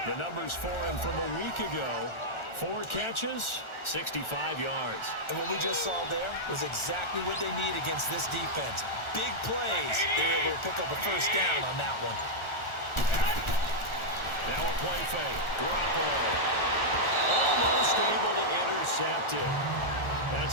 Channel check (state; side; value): late; right; 1.4 ms